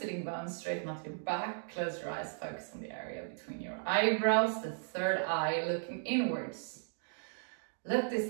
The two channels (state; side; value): silent; left; digital silence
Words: bones, straighten out your back, close your eyes, focus on the area between your eyebrows, the third eye looking inwards. Let